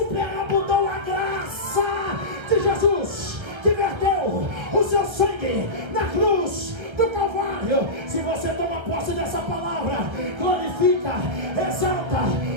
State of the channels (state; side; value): late; left; 1.3 ms